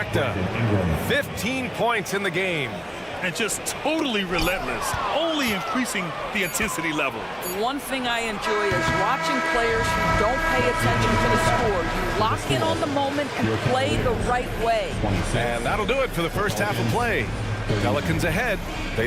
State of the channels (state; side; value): identical; both; correlation 1.00